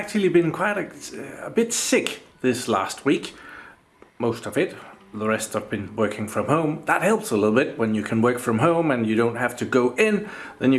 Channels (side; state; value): both; identical; correlation 1.00